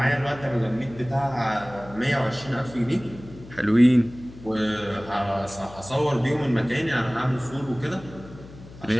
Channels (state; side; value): noise; left; hum, 18 dB below the sound